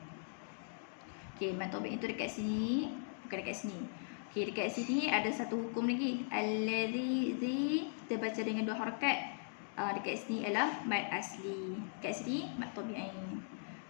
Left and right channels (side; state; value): right; silent; digital silence